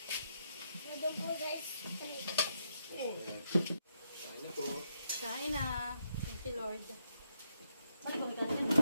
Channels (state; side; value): inverted; both; correlation -0.78